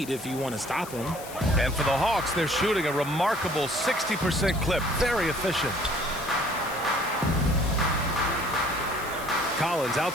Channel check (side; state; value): left; noise; hiss, 15 dB below the sound